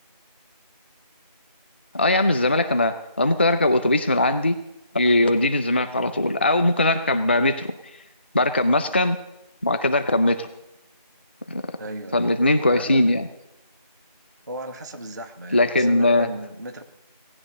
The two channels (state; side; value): inverted; both; correlation -0.70